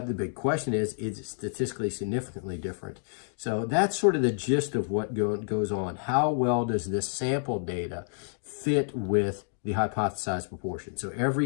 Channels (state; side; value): silent; right; 59 dB below the other